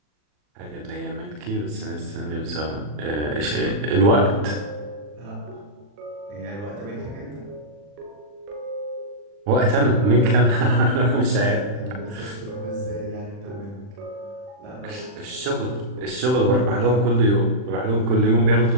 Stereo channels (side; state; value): left; late; 40 ms